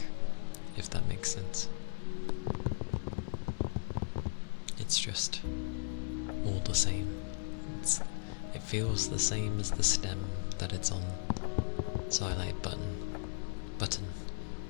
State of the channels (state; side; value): silent; right; digital silence